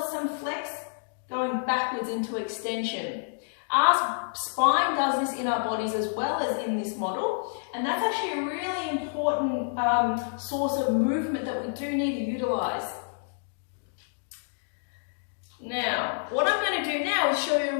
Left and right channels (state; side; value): silent; right; digital silence